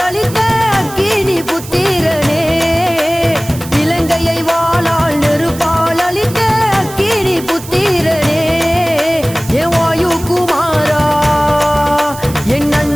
அளித்த அக்கினி புத்திரனே இலங்கையை வாளால் நெருப்பால் அளித்த அக்கினி புத்திரனே ஏ வாயு குமாரா என்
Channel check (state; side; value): noise; right; hiss, 15 dB below the sound